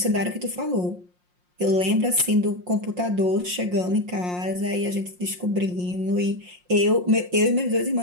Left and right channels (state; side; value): late; left; 5.6 ms